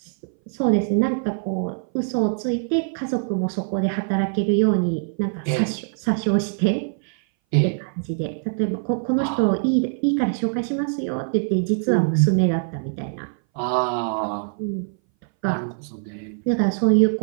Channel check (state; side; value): silent; left; 60 dB below the other